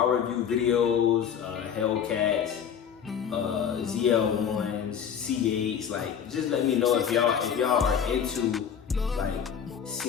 review videos, Hellcats, ZL1s, C8s, like just let me know if y'all are into like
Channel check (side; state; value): right; quieter; 8.0 dB